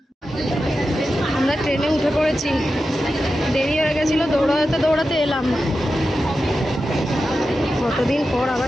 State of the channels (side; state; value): both; normal; correlation 0.91